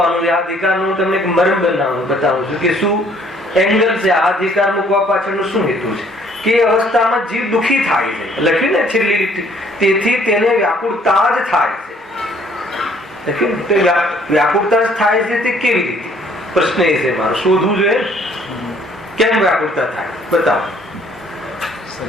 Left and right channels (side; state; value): both; normal; correlation 0.61